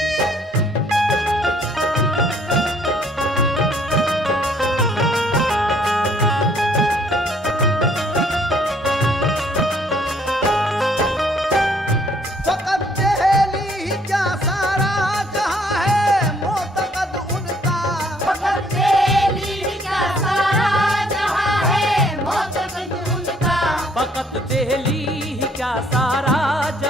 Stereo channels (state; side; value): normal; both; correlation 0.63